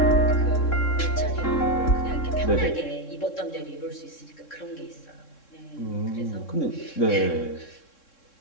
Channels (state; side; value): late; right; 3.6 ms